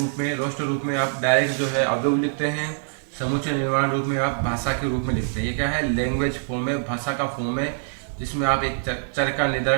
में, रोस्टर रूप में आप डायरेक्ट जो है अवयव लिखते हैं। समुच्चय निर्माण रूप में आप भाषा के रूप में लिखते हैं। ये क्या है? लैंग्वेज फॉर्म है, भाषा का फॉर्म है, जिसमें आप एक चर का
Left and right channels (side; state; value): left; silent; digital silence